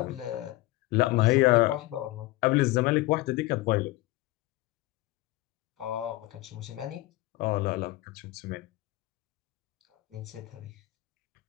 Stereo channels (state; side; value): quieter; right; 18.7 dB